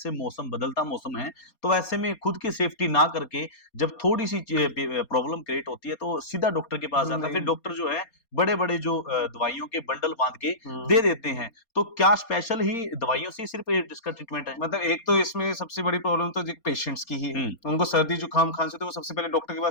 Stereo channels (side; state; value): right; late; 4.3 ms